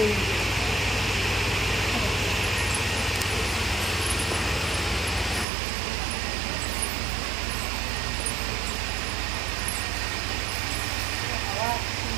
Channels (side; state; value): left; drops out; at 5.5 s